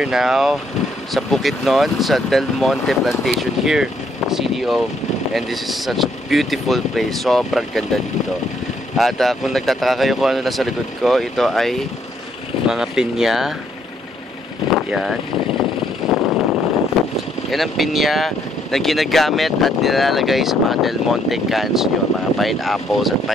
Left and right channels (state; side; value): normal; both; correlation 0.70